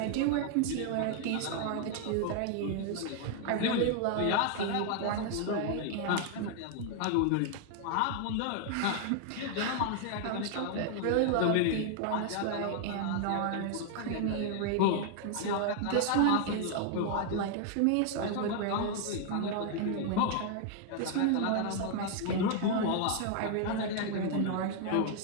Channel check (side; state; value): both; different; correlation 0.00